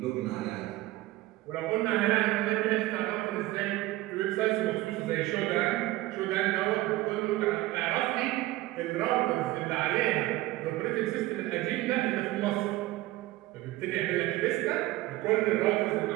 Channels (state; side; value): quieter; left; 17.6 dB